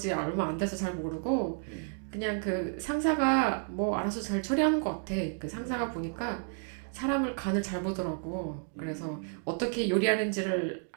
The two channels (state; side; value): silent; left; 57 dB below the other